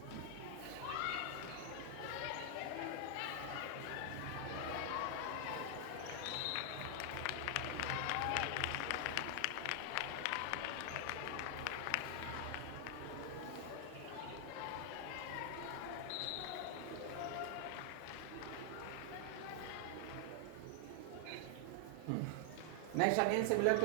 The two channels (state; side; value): different; both; correlation 0.00